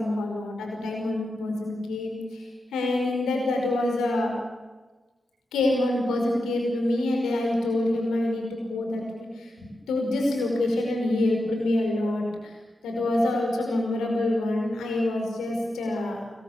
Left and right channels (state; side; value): normal; both; correlation 0.89